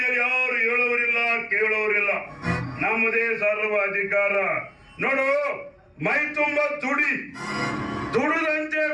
ಯಾರು ಹೇಳೋರಿಲ್ಲ ಕೇಳೋರಿಲ್ಲ. ನಮ್ಮದೇ ಸರ್ವ ಅಧಿಕಾರ. ನೋಡು, ಮೈ ತುಂಬ ದುಡುದಂತೆ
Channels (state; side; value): identical; both; correlation 1.00